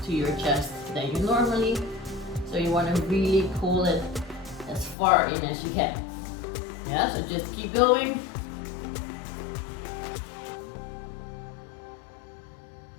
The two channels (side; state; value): right; drops out; at 5.0 s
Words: to your chest than you normally. So you want to really pull it as far in as you can. Yeah, so just keep going.